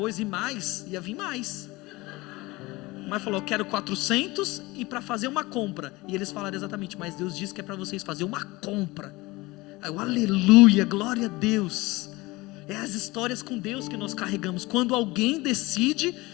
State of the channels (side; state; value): right; quieter; 21.6 dB